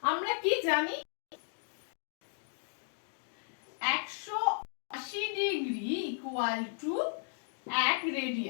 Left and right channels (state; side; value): silent; right; digital silence